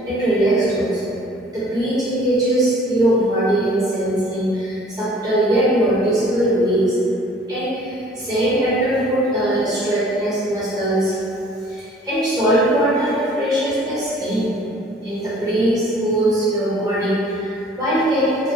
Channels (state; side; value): normal; both; correlation 0.52